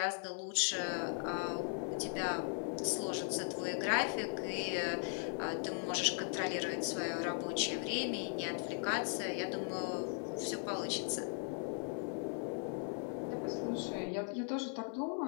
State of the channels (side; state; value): right; silent; 52 dB below the other